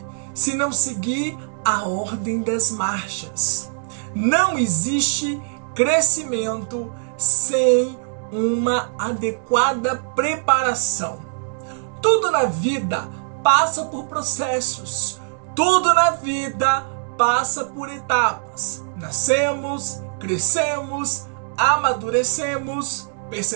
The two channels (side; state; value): left; silent; digital silence